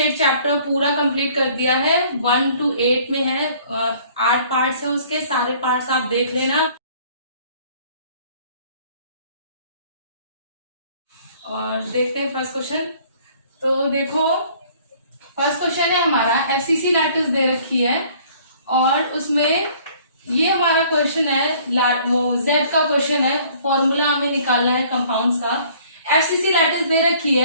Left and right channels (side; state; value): both; inverted; correlation -0.56